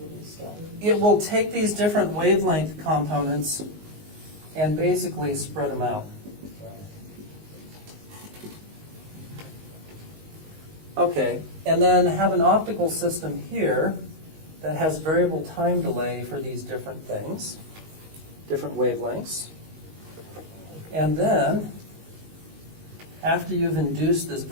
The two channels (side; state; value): left; late; 19 ms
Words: It will take these different wavelength components and basically spread them out. Okay, and then have an optical system here that has variable time delay for these different things, different wavelengths. And then, after you've induced this